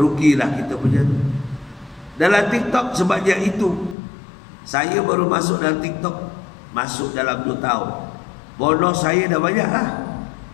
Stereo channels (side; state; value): right; drops out; at 4.0 s